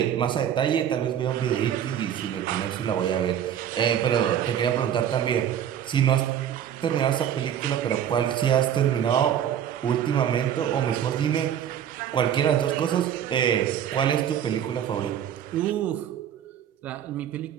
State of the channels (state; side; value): quieter; left; 9.6 dB